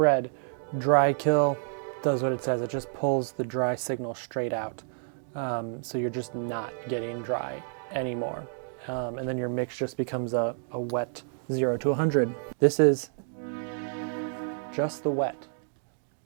Dry kill does what it says. It just pulls the dry signal straight out. So you're just not getting dry anymore. And then your mix just becomes a wet 0 to 100. This is just the wet.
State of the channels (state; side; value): silent; left; digital silence